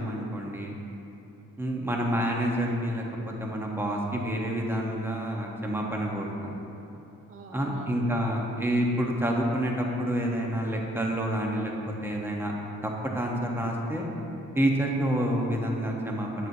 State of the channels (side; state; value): both; normal; correlation 0.68